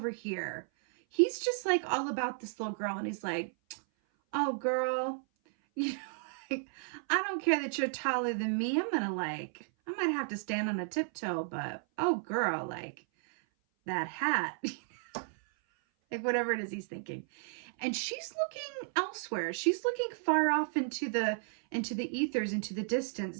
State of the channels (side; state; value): left; silent; 55 dB below the other